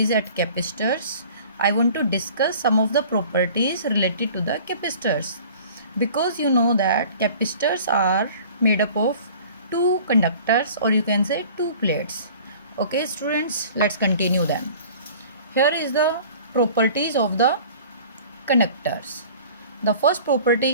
at capacitors, I want to discuss some of the properties related to the capacitors, because you know that capacitors are made up of two conductors, or you can say two plates. Okay students, let's continue them. Here is the properties of the conductors. The first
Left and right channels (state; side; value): inverted; both; correlation -0.46